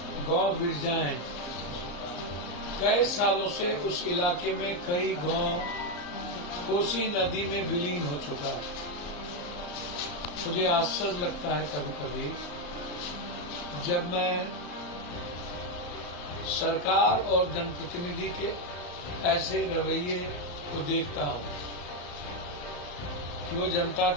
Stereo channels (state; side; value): late; right; 34 ms